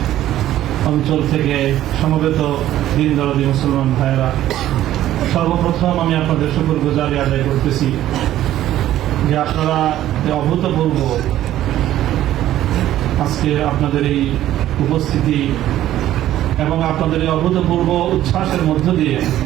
অঞ্চল থেকে সমবেত দিন দরদি মুসলমান ভাইয়েরা, সর্বপ্রথম আমি আপনাদের শুকরগুজারি আদায় করতেছি যে আপনারা অভূতপূর্ব আজকে আপনাদের এই উপস্থিতি এবং আপনাদের এই অভূতপূর্ব উচ্ছ্বাসের মধ্য দিয়ে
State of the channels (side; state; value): left; quieter; 13.2 dB